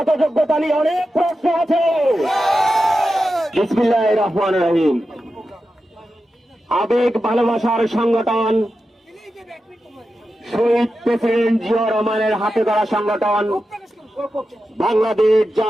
যোগ্যতা নিয়ে অনেক প্রশ্ন আছে। বিসমিল্লাহির রহমানির রহিম। আবেগ ভালোবাসার সংগঠন, শহীদ প্রেসিডেন্ট জিয়াউর রহমানের হাতে ধরা সংগঠন বাংলাদেশ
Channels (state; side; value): normal; both; correlation 0.91